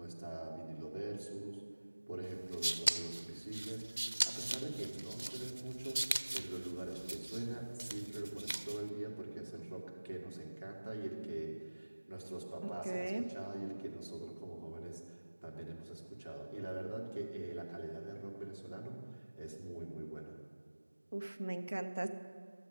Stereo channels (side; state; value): both; inverted; correlation -1.00